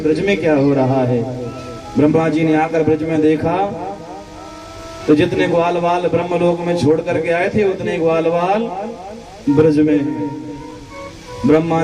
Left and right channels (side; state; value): both; identical; correlation 1.00